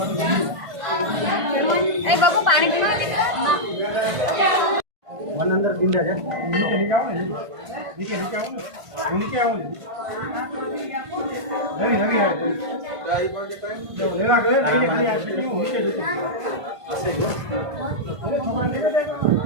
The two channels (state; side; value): late; left; 1.5 ms